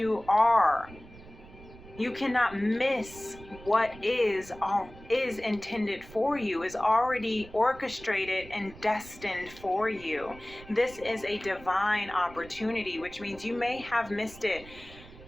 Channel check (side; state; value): right; noise; rumble, 19 dB below the sound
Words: are. You cannot miss what is intended for you, is already orchestrated and destined for you. This is a divine opportunity, which means you may have missed it.